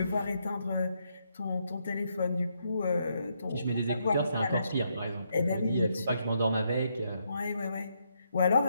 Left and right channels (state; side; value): inverted; both; correlation -0.77